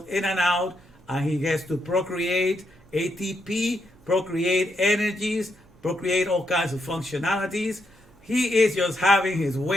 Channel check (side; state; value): right; noise; hum, 28 dB below the sound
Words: in and out, and he gets to procreate ATP, procreate energies, procreate all kinds of functionalities. He is just having his